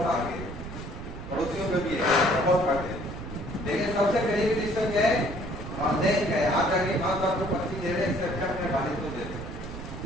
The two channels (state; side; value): noise; right; rumble, 10 dB below the sound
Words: سا آگے, پڑوسیوں کا بھی ہے بہت فرق ہے, لیکن سب سے قریبی رشتہ کیا ہے, والدین کا ہے. آپ جا کے ماں باپ کو پرچی دے رہے ہیں, اس سے اچھا اپنے والد کو دے دیں.